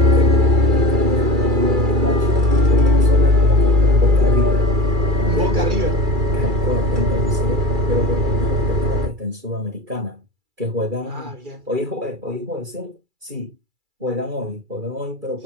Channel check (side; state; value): left; late; 2.3 ms